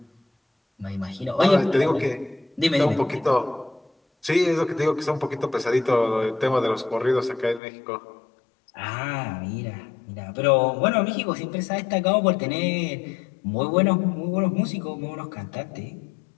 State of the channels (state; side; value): drops out; right; at 7.6 s